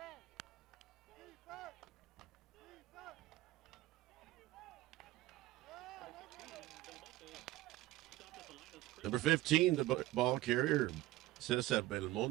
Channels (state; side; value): quieter; left; 17.4 dB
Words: Number 15, the ball carrier, Cesar